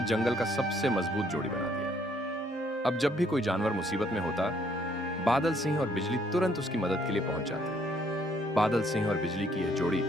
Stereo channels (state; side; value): normal; both; correlation 0.66